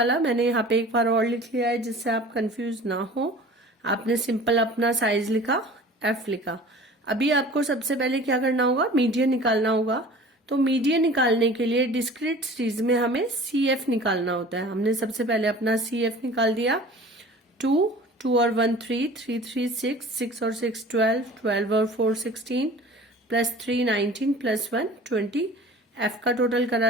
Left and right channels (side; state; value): both; normal; correlation 0.43